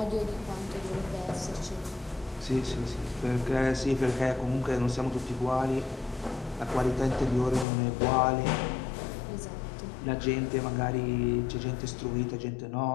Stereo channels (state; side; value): drops out; right; at 7.7 s